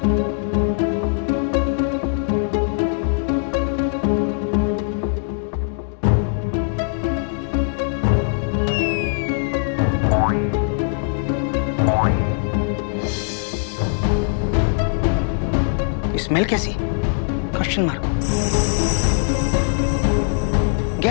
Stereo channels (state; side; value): silent; right; digital silence